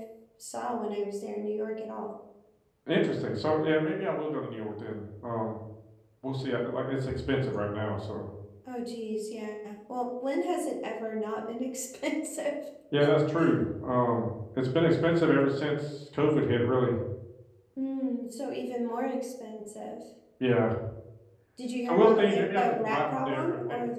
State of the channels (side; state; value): both; identical; correlation 1.00